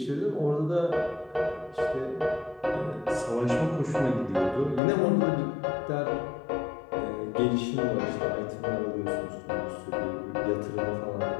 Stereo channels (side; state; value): right; drops out; at 4.8 s